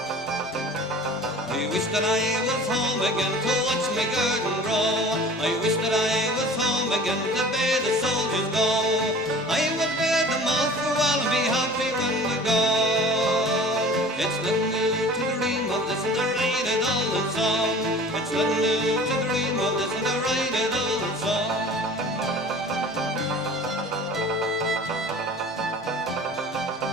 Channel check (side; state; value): both; normal; correlation 0.43